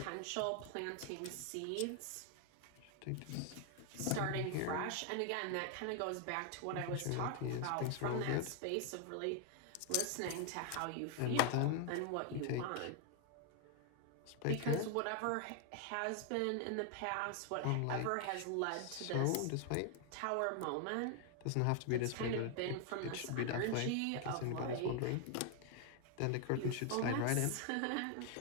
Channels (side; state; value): both; different; correlation 0.00